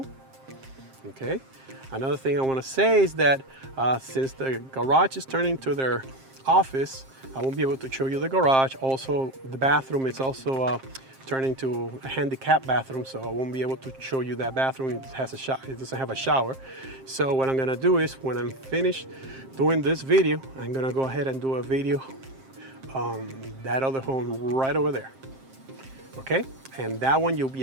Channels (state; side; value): late; left; 7.5 ms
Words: Okay. Another thing I want to say is that since the garage is turning to their office, I won't be able to show you the garage. Also, the bathroom is also turning to a handicap bathroom, so I won't be able to show you that bathroom. It has it doesn't have a shower. So what I'm gonna do is, when I'm finished doing this video, I'm gonna go ahead and do a video on that other home right over there. Okay, and that one you'll be